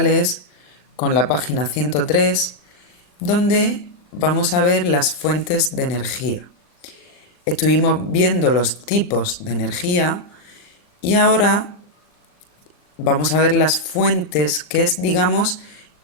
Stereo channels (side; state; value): right; late; 39 ms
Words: con la página 103, donde vamos a ver las fuentes de energía. Estuvimos viendo los tipos de energía y ahora vamos a ver las fuentes, que es, digamos,